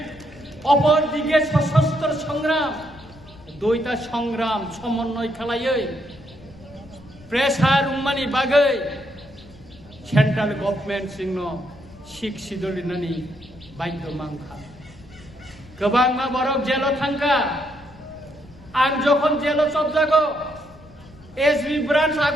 অপরদিকে সশস্ত্র সংগ্রাম দুইটা সংগ্রাম সমন্বয় খালাইयै প্রেসার উম্মানি বাগৈ সেন্ট্রাল গভর্নমেন্ট সিংন শিখ সিদলিনানি বাধ্য মাংখা गोबां मा बरक जेल थांखा आं जखन जेल सबजागो एसबी ब्रांच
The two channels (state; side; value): noise; left; rumble, 22 dB below the sound